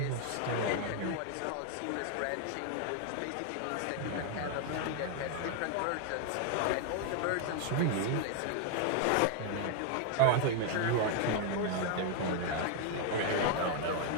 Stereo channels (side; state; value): both; different; correlation 0.00